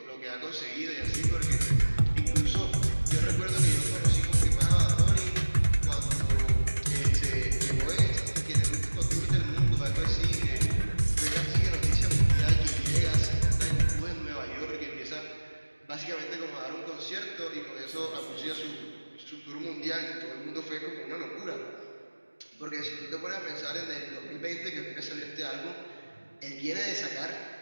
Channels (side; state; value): both; inverted; correlation -1.00